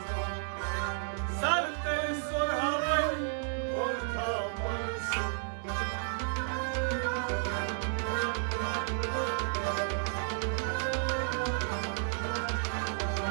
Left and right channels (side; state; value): left; silent; digital silence